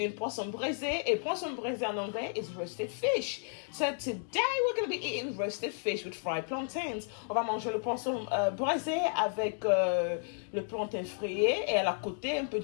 Poisson Braisé. Et Poisson Braisé en anglais is roasted fish. So today we're going to be eating roasted fish with fried plantains. On va manger le poisson braisé avec le plantain frité et à la côté un peu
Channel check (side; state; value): right; silent; 56 dB below the other